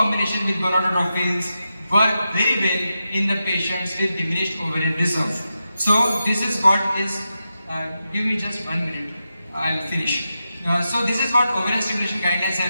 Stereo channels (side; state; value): both; inverted; correlation -0.89